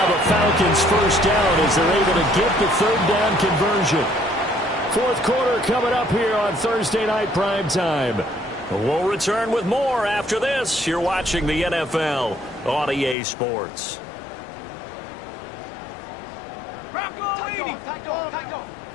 a Falcons first down as they're able to get the third down conversion. Fourth quarter coming up here on Thursday Night Primetime. We'll return with more after this. You're watching the NFL on EA Sports.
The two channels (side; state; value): right; drops out; at 13.2 s